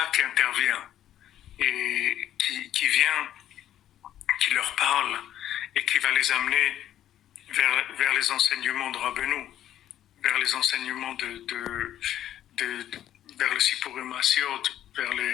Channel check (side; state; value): right; quieter; 11.7 dB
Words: qui intervient et qui vient, qui leur parle et qui va les amener vers les enseignements de Rabbeinu, vers les enseignements vers le Sipurim Asiot, vers